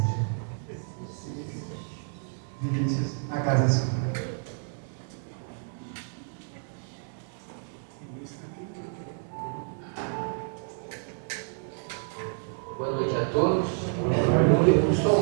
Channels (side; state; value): left; silent; 58 dB below the other